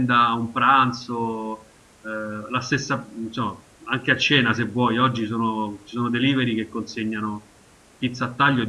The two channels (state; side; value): identical; both; correlation 1.00